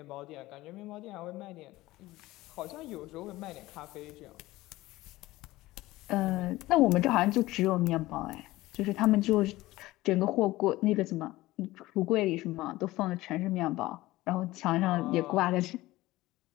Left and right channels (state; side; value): quieter; right; 18.0 dB